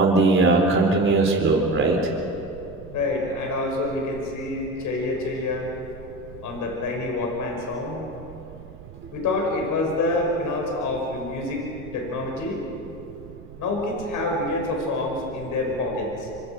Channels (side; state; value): right; noise; rumble, 16 dB below the sound